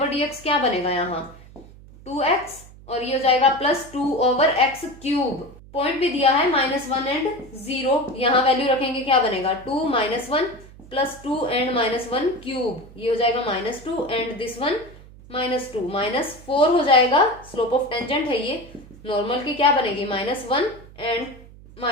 क्या बनेगा यहाँ 2x, और ये हो जाएगा +2/x³, पॉइंट भी दिया है -1 एंड 0, यहाँ वैल्यू रखेंगे क्या बनेगा 2 -1 +2 एंड -1³, ये हो जाएगा -2 एंड दिस वन -2, -4 हो जाएगा, स्लोप ऑफ टेंजेंट है ये, नॉर्मल की क्या बनेगी -1 एंड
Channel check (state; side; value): noise; right; hum, 20 dB below the sound